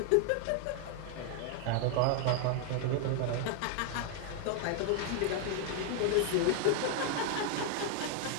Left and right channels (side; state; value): both; different; correlation 0.00